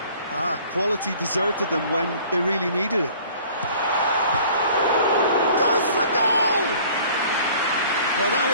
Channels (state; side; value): inverted; both; correlation -0.50